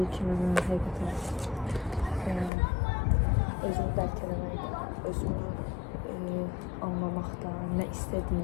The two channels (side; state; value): right; drops out; at 2.5 s